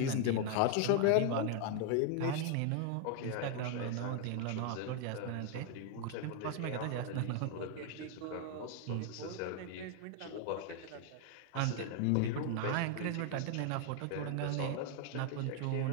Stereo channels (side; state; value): both; different; correlation 0.00